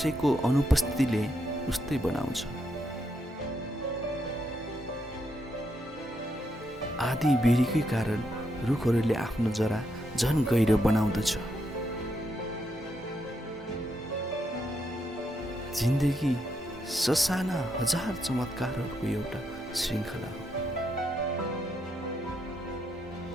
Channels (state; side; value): normal; both; correlation 0.79